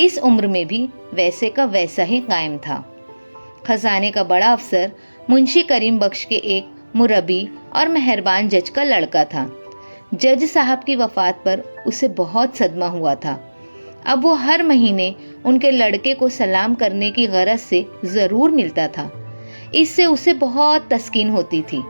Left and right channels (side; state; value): both; inverted; correlation -1.00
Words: عمر میں بھی ویسے کا ویسا ہی قائم تھا. خزانے کا بڑا افسر منشی کریم بخش کے ایک مربی اور مہربان جج کا لڑکا تھا. جج صاحب کی وفات پر اسے بہت صدمہ ہوا تھا. اب وہ ہر مہینے ان کے لڑکے کو سلام کرنے کی غرض سے ضرور ملتا تھا. اس سے اسے بہت تسکین ہوتی تھی.